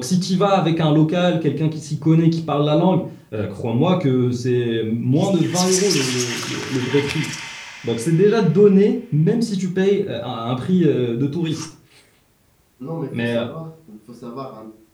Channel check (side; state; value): both; identical; correlation 1.00